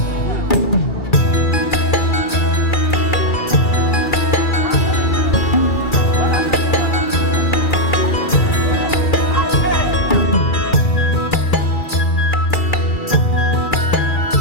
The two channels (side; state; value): right; late; 2.3 ms